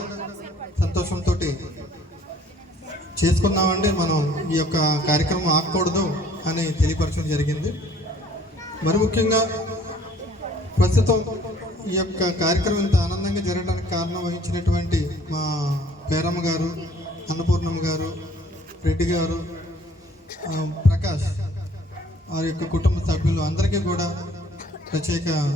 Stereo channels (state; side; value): normal; both; correlation 0.56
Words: సంతోషంతో చేసుకున్నామండి, మనం ఈ యొక్క కార్యక్రమం ఆగకూడదు అని తెలియపరచడం జరిగింది. మరి ముఖ్యంగా ప్రస్తుతం ఈ యొక్క కార్యక్రమం ఇంత ఆనందంగా జరగడానికి కారణం వహించినటువంటి మా పేరమ్మ గారు, అన్నపూర్ణమ్మ గారు, రెడ్డి గారు, ప్రకాష్ వారి యొక్క కుటుంబ సభ్యులు అందరికీ కూడా ప్రత్యేక